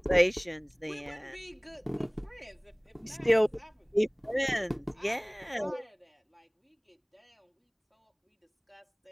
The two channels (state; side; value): identical; both; correlation 1.00